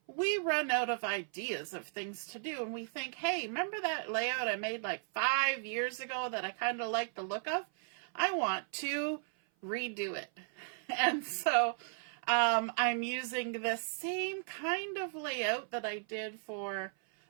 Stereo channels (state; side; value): silent; left; 54 dB below the other